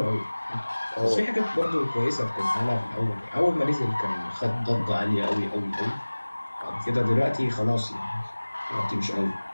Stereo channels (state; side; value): inverted; both; correlation -1.00